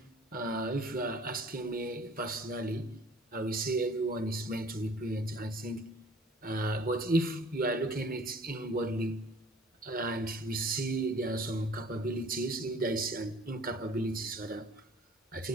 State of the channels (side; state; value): both; normal; correlation 0.51